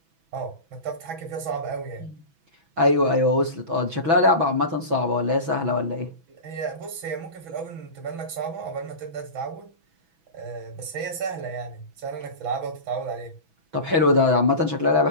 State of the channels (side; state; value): left; late; 6.1 ms